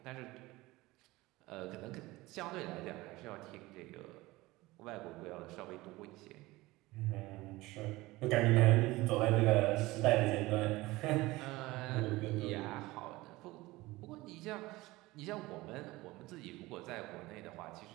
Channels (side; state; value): left; quieter; 19.9 dB